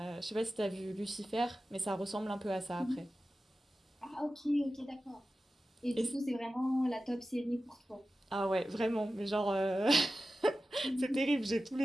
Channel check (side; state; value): both; normal; correlation 0.94